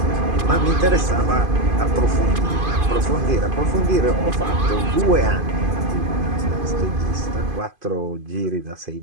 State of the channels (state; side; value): late; left; 2.5 ms